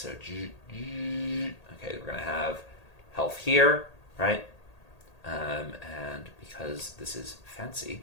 okay, we're going to have health here, right? And because this is fancy,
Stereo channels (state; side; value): late; right; 1.8 ms